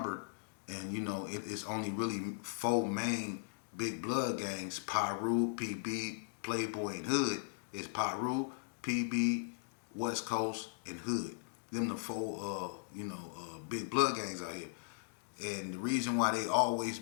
and you know it's only really 4 main big blood gangs: Pyro, PB, Playboy, and Hood. It's Pyro, PB, West Coast, and Hood. Them the 4 big blood gangs out here. And the reason why they always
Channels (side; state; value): right; silent; digital silence